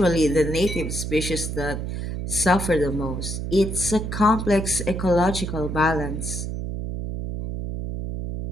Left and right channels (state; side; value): noise; right; hum, 4 dB below the sound